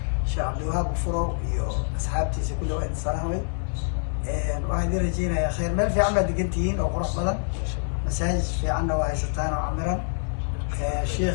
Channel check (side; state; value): right; silent; 61 dB below the other